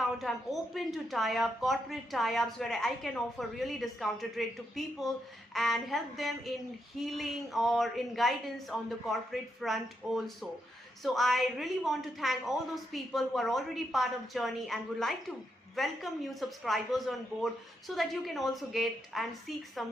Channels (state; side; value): normal; both; correlation 0.81